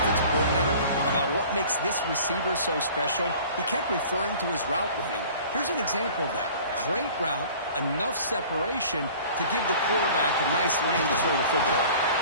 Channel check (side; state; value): both; inverted; correlation -0.46